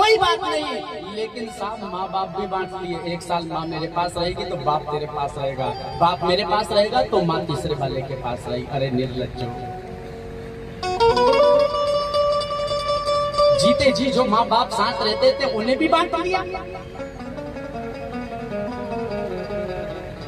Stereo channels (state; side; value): identical; both; correlation 1.00